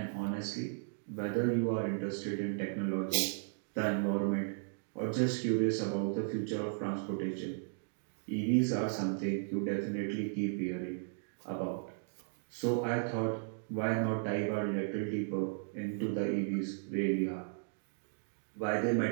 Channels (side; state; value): left; silent; digital silence